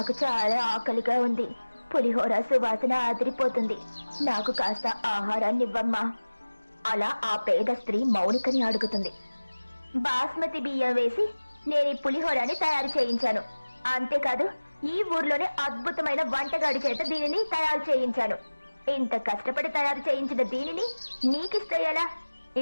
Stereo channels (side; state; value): both; inverted; correlation -1.00